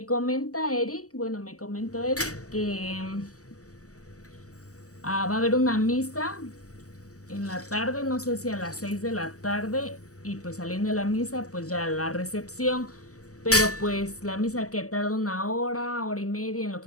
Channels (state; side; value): late; right; 0.66 ms